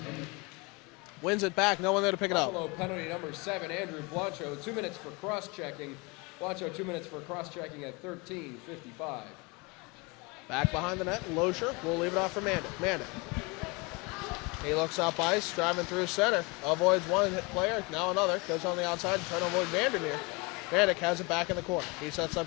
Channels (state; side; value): quieter; right; 27.6 dB